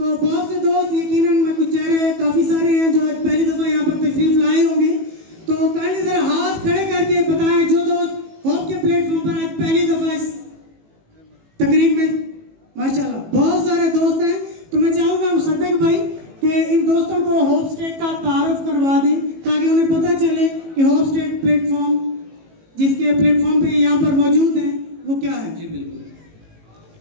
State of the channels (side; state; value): left; late; 18 ms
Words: बहुत से दोस्त यकीनन मैं कुछ चेहरे काफ़ी सारे हैं जो आज पहली दफ़ा यहाँ पर तशरीफ लाए होंगे, तो काइंडली ज़रा हाथ खड़े करके बताएं जो दोस्त होप के प्लेटफॉर्म पर आज पहली दफ़ा इस तकरीब में। माशाल्लाह बहुत सारे दोस्त हैं, तो मैं चाहूँगा मुसद्दिक भाई कि इन दोस्तों को होपस्टेक का तारुफ करवा दें ताकि उन्हें पता चले कि होपस्टेक प्लेटफॉर्म जिसके प्लेटफॉर्म पे यहाँ पर मौजूद हैं वो क्या है। जी बिल्कुल।